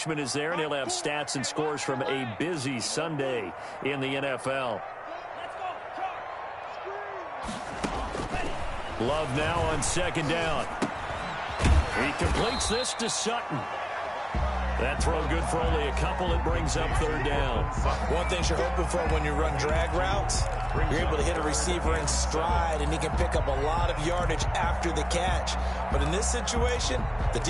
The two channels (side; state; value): both; identical; correlation 1.00